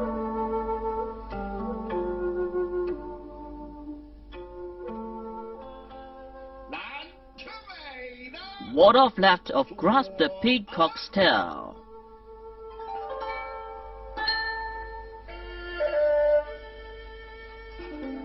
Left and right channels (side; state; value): both; identical; correlation 1.00